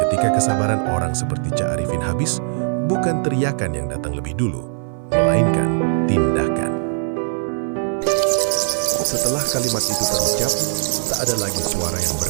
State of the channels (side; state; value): left; silent; 57 dB below the other